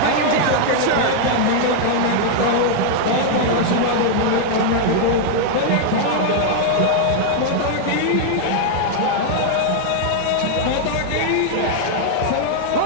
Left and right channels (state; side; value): different; both; correlation -0.01